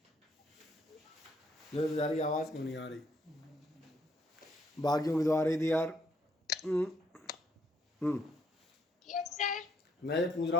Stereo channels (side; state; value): both; normal; correlation 0.71